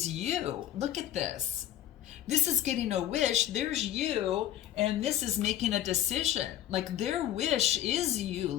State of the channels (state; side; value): quieter; right; 11.6 dB